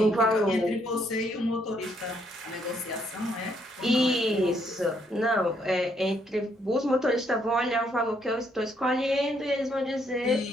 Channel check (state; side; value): normal; both; correlation 0.72